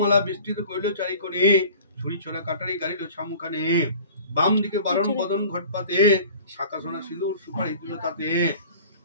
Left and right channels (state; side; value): inverted; both; correlation -0.44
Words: বিস্তৃত করিল চারিকোণে, ছুরি ছড়া কাটারি গাড়িল ছামুখানে। বাম দিকে বারণ বদন ঘট পাতে, শাখা সোনা সিঁদুর সুপারি দিল তাতে।